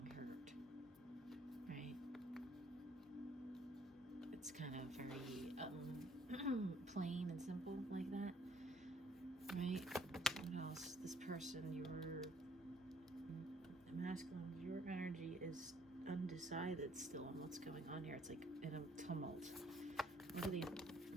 hurt, right? It's kind of very plain and simple like that, right? What else? This person, your masculine, your energy is undecided still on what's going on here. It's like in a tumult. Look at the,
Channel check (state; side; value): normal; both; correlation 0.62